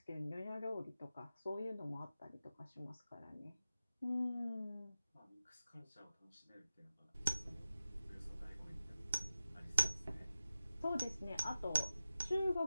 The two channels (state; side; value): inverted; both; correlation -0.94